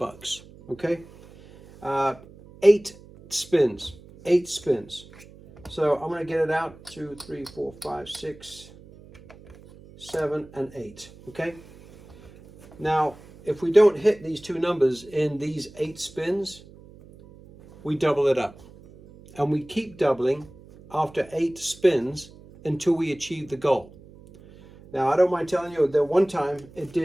Okay, 8 spins. So I'm going to get it out. 2, 3, 4, 5, 6, 7, and 8. Okay. Now, if we don't hit these two numbers in these 8 spins, we double it up, and we keep doubling after 8 spins until we achieve the goal. Now, I don't mind telling you that one time it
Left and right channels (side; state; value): right; noise; hum, 22 dB below the sound